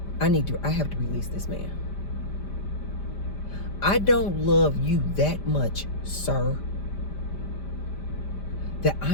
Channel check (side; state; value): right; late; 5.0 ms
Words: I have to release this man. I don't love you that much, sir, that